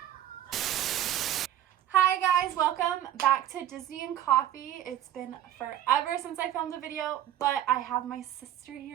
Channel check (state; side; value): quieter; left; 11.8 dB